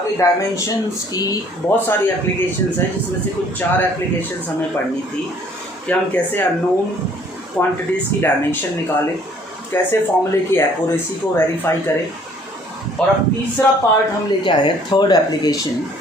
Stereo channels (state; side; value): normal; both; correlation 0.58